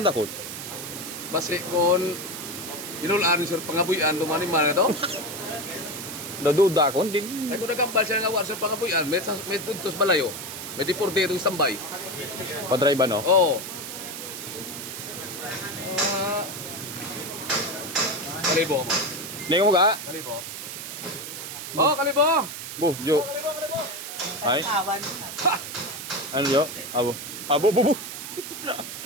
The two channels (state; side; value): noise; right; hiss, 8 dB below the sound